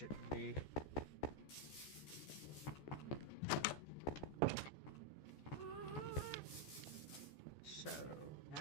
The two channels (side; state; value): right; late; 14 ms